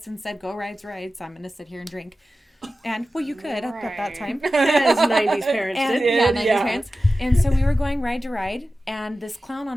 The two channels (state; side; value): normal; both; correlation 0.94